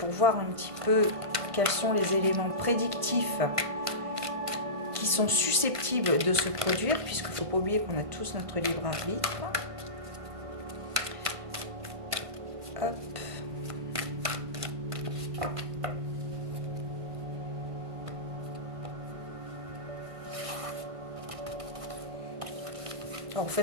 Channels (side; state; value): left; late; 1.5 ms